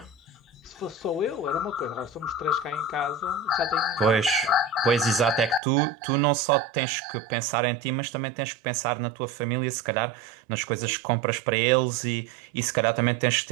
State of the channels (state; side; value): drops out; left; at 5.6 s